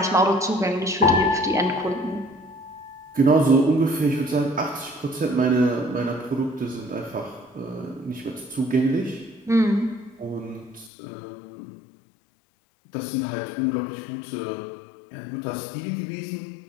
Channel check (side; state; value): right; drops out; at 10.9 s